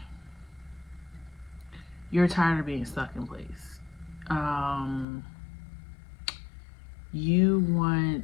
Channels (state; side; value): drops out; right; at 5.1 s